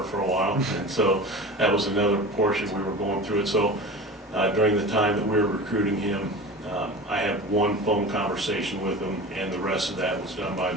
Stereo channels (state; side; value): normal; both; correlation 0.33